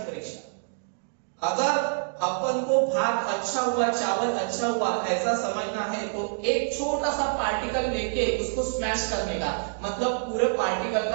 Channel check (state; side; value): silent; left; digital silence